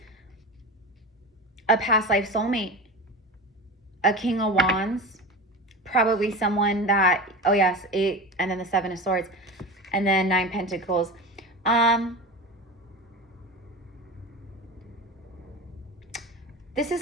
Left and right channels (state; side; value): normal; both; correlation 0.28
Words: a past life soulmate, a King of Wands, probably someone that, oh yes, 8, and then the 7 of Swords, and then 9 Pentacles. This is